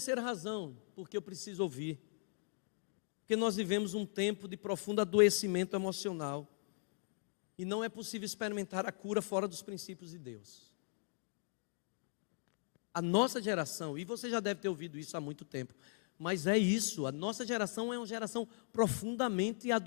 razão, porque eu preciso ouvir, porque nós vivemos um tempo de profundo adoecimento emocional, e não é possível experimentar a cura fora dos princípios de Deus. A nossa geração, e você já deve ter ouvido isso há muito tempo, mas é isso, a nossa geração é uma geração profundamente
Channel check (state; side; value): silent; right; digital silence